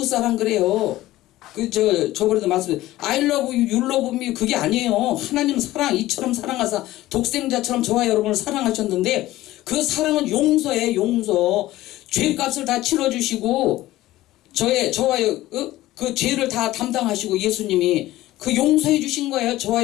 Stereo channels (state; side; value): quieter; right; 16.2 dB